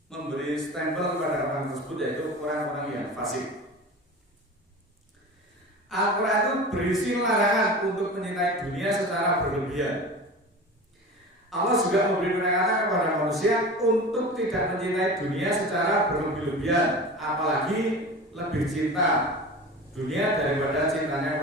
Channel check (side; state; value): both; normal; correlation 0.34